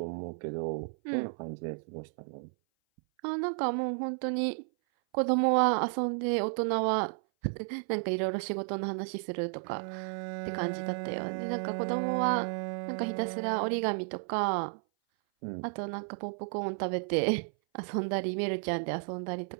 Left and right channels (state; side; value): silent; left; 56 dB below the other